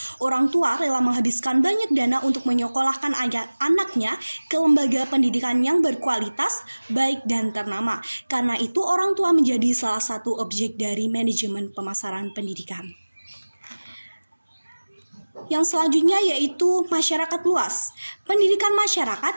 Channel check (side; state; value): both; inverted; correlation -1.00